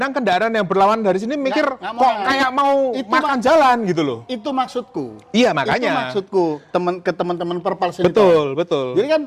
kendaraan yang berlawan dari sini mikir, nggak kok kayak mau makan jalan gitu loh. Itu maksudku. Iya, makanya. Itu maksudku ke teman-teman Perpals ini. Betul. Jadi kan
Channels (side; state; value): both; identical; correlation 1.00